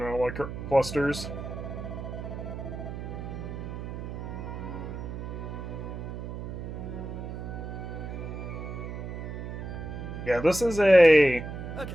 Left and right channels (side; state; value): right; noise; hum, 7 dB below the sound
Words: clusters. Yeah, this is